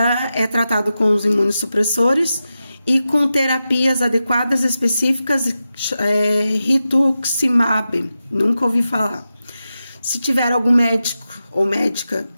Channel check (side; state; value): both; inverted; correlation -0.91